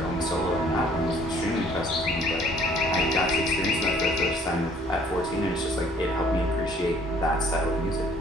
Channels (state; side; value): normal; both; correlation 0.58